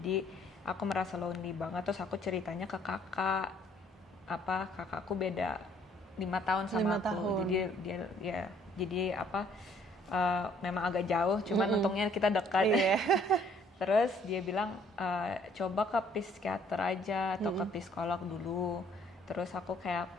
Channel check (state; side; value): normal; both; correlation 0.62